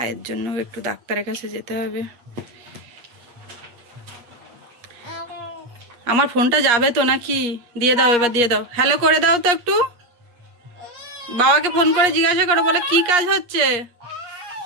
জন্য একটু ডাক্তারের কাছে যেতে হবে। আমার ফোনটা যাবে তো নাকি? দিয়ে দাও, এবার দিয়ে দাও। হ্যালো করে দাও তো একটু, বাবাকে ফোন করে জিজ্ঞাসা করো, বলে কি কাজ হচ্ছে।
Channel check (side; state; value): left; late; 8.4 ms